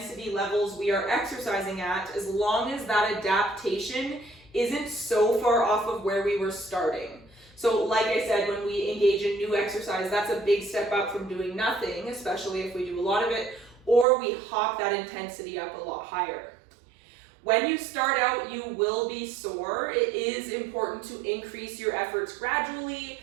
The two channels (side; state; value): left; drops out; at 14.1 s